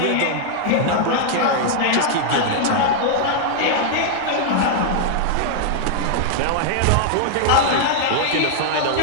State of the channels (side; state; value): both; different; correlation -0.01